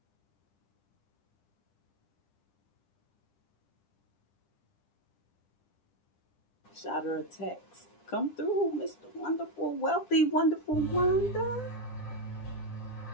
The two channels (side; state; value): right; late; 10 ms